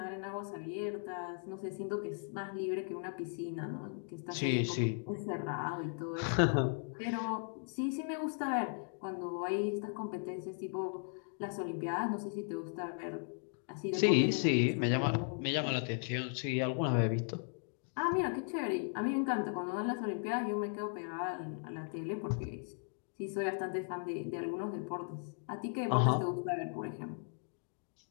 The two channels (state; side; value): silent; right; 53 dB below the other